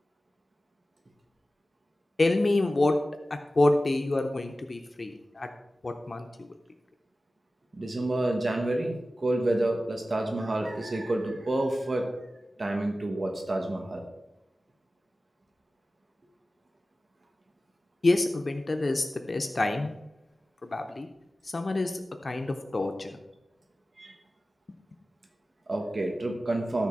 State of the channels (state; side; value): normal; both; correlation 0.95